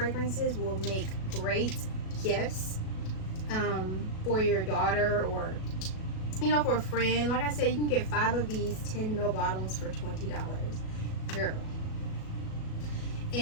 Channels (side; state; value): right; late; 37 ms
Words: will make great gifts for your daughter, or for a friend. Like I said, you can get 5 of these 10 ml bottles for $20. Girl.